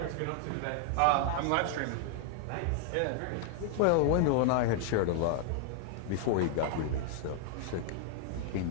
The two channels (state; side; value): different; both; correlation 0.00